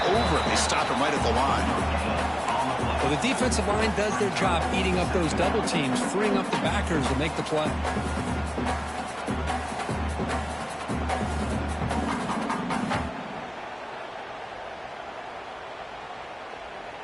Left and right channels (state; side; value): identical; both; correlation 1.00